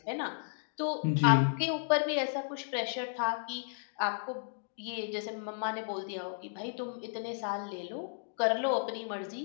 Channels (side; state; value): right; silent; digital silence